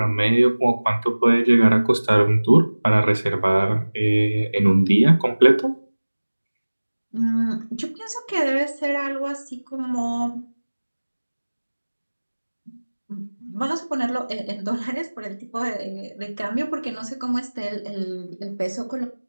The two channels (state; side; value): inverted; both; correlation -1.00